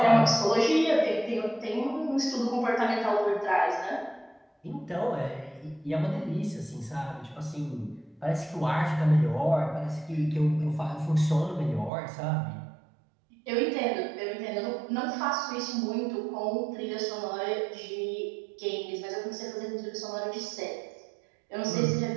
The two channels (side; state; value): left; drops out; at 11.9 s